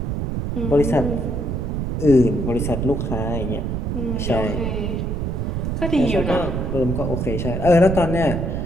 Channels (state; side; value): noise; right; rumble, 1 dB below the sound